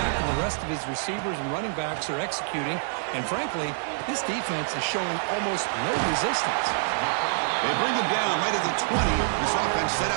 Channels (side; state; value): left; silent; digital silence